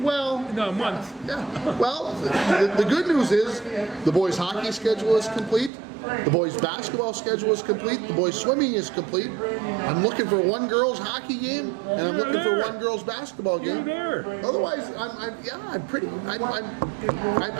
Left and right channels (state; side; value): drops out; left; at 5.7 s